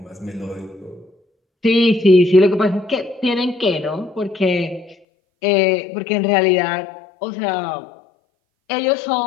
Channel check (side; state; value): right; drops out; at 5.0 s